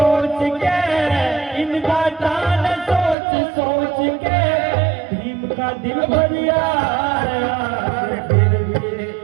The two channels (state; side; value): drops out; left; at 3.2 s